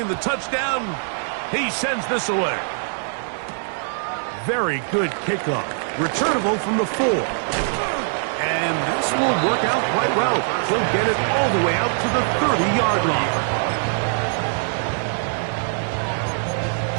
the touchdown, he sends this away. Very good kickoff. Returnable from the 4. And this will work out quite well. He'll get it all the way out to the 30-yard line.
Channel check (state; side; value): silent; left; digital silence